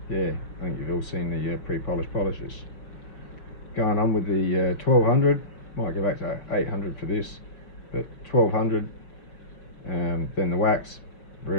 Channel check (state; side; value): late; right; 5.5 ms